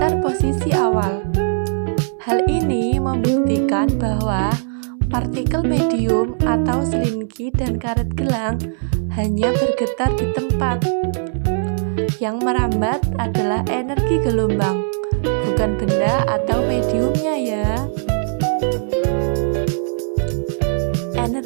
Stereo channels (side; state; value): left; silent; 66 dB below the other